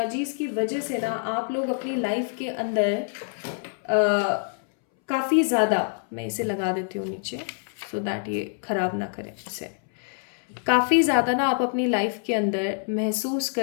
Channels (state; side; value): silent; right; 61 dB below the other